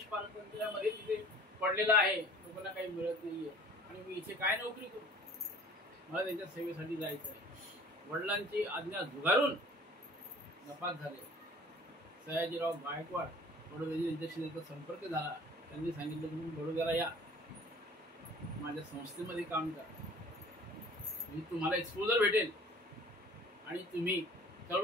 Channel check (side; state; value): both; normal; correlation 0.49